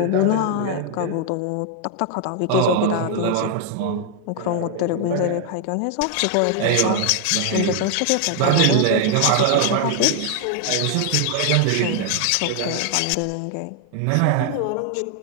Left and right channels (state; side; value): different; both; correlation 0.00